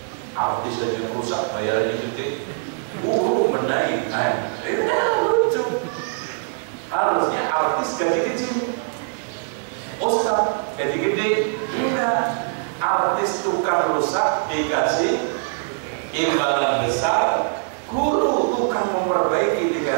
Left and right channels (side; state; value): left; silent; 64 dB below the other